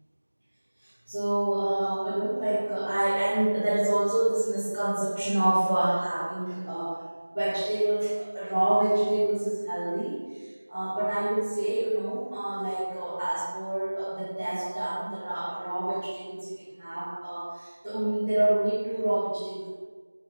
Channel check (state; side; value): inverted; both; correlation -1.00